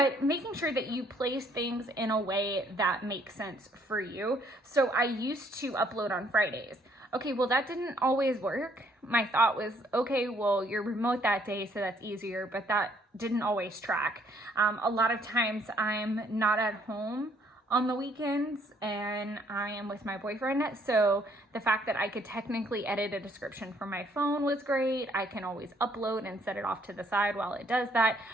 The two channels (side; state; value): both; normal; correlation 0.66